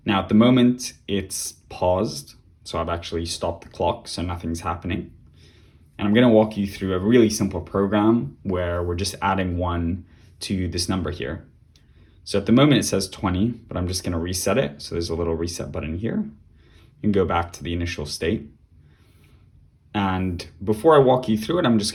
Now at the moment it's paused, so I've actually stopped the clock so nothing's happening. And I'm going to walk you through a really simple program where we're just adding 1 to this number here. So at the moment it says 20, but I'm just going to reset it. So there's a little reset button here. You can go back to the initial state. And before I walk you through it, I'm just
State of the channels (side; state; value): both; identical; correlation 1.00